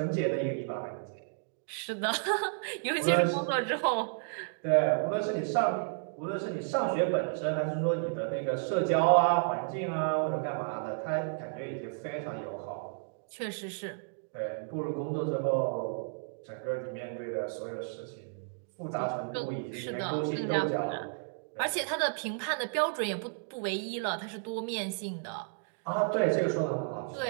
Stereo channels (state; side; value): silent; left; digital silence